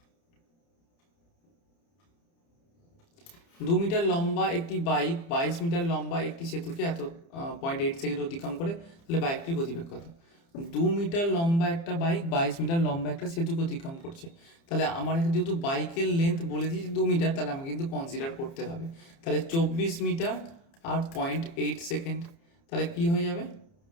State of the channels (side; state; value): right; late; 30 ms